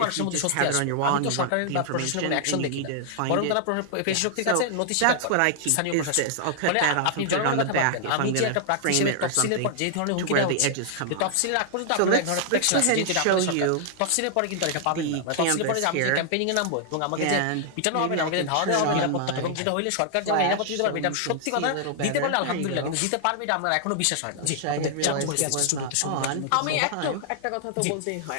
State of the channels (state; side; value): different; both; correlation -0.01